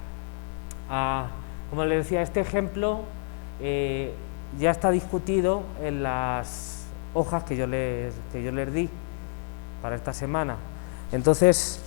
como les decía, este ejemplo ya está discutido en las hojas que yo les di para esta semana. Entonces,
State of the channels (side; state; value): right; silent; 59 dB below the other